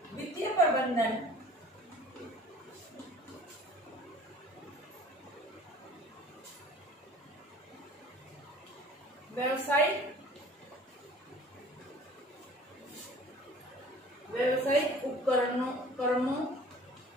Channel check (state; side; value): normal; both; correlation 0.47